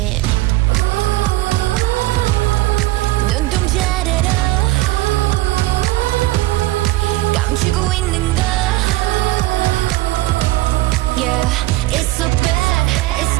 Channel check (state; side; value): quieter; left; 18.2 dB